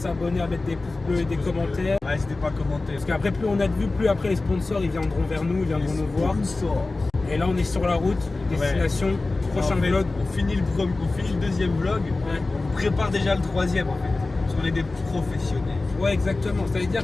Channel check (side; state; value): right; quieter; 3.3 dB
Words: à mettre des pouces bleus et des commentaires. Ouais, n'hésitez pas à commenter. Parce qu'après plus on a de vues, plus après les sponsors ils viendront vers nous, ils viendront nous voir. Et là on est sur la route, destination, prochain vlog. On finit le deuxième vlog, on prépare déjà le troisième en fait. Parce qu'on est des professionnels. Ouais exactement, ça veut